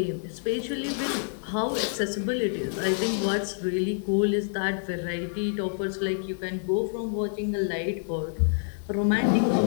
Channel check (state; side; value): silent; right; digital silence